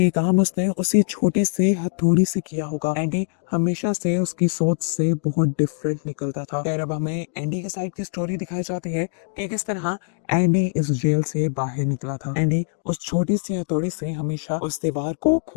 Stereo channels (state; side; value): silent; right; digital silence